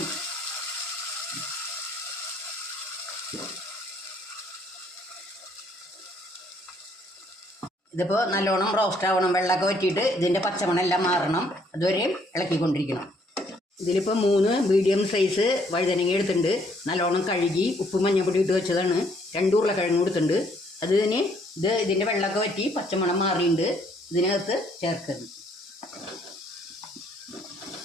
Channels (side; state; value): both; normal; correlation 0.66